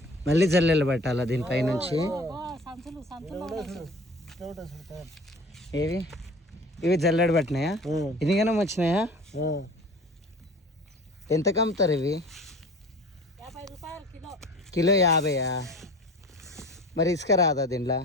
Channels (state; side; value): normal; both; correlation 0.42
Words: మళ్ళీ జల్లెలు పట్టాలా దీనిపై నుంచి? ఏవి ఇవి జల్లెడ పట్టినాయా? ఇదిగానే వచ్చినాయా? ఎంత కమ్ముతారు ఇవి? కిలో 50. మరి ఇసుక రాదా దీంట్లో?